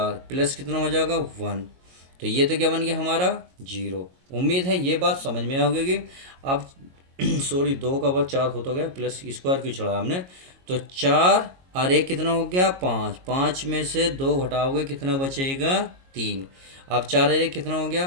प्लस कितना हो जाएगा 1, तो ये तो क्या बन गया हमारा 0। उम्मीद है ये बात समझ में आ गई। अब सॉरी 2 का वर्ग 4 हो तो गया, प्लस स्क्वायर क्यों चढ़ा हमने। तो 4 और 1 कितना हो गया 5, 5 में से 2 घटाओगे कितना बचेगा 3। अब 4 और 1 कितना हो गया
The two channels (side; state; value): left; late; 22 ms